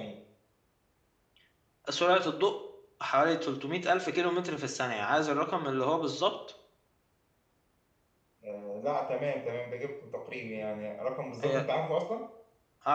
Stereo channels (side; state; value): both; identical; correlation 1.00